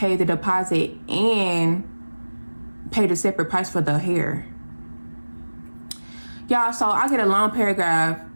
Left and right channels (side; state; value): both; inverted; correlation -1.00